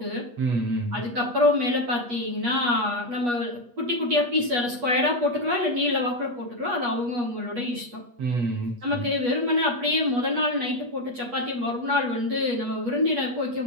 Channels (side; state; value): left; late; 8.3 ms